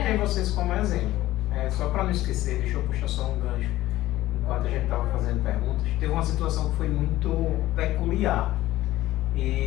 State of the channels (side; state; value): right; quieter; 15.8 dB